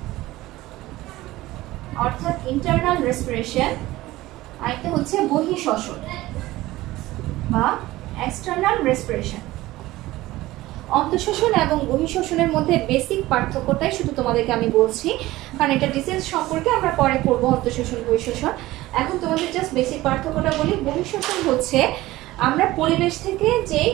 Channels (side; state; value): left; quieter; 17.6 dB